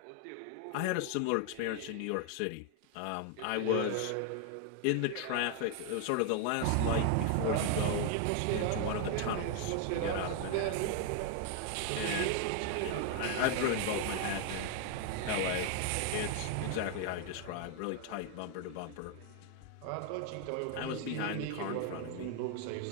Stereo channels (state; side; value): different; both; correlation 0.00